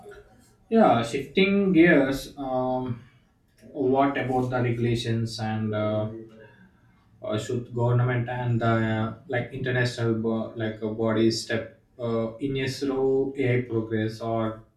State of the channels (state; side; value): identical; both; correlation 1.00